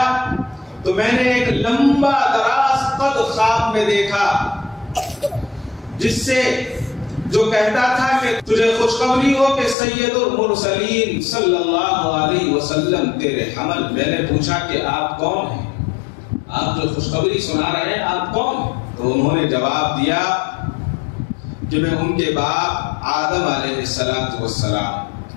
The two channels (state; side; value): drops out; right; at 9.8 s